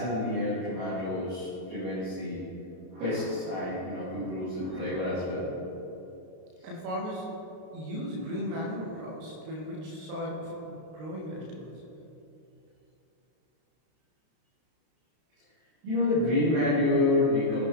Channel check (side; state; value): left; late; 32 ms